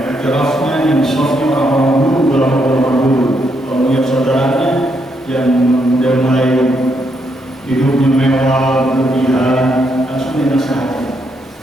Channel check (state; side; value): normal; both; correlation 0.77